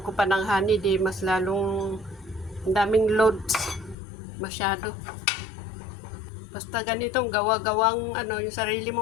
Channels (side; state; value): right; drops out; at 4.0 s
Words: pa ng honey, di mas lalong daming loads masyado. Basta ganitong gawa-gawang yung sarili